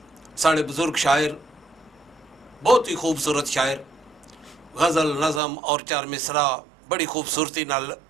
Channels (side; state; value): left; drops out; at 5.4 s